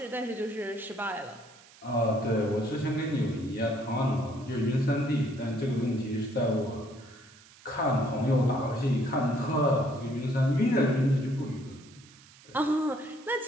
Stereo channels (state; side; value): noise; right; hiss, 24 dB below the sound